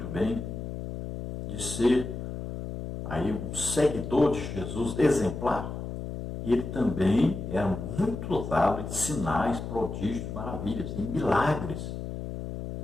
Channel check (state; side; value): noise; left; hum, 7 dB below the sound